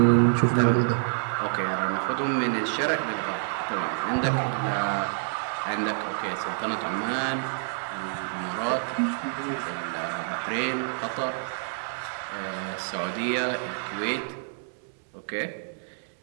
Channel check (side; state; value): left; silent; digital silence